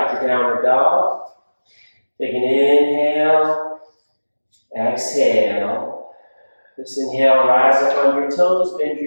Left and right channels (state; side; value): inverted; both; correlation -1.00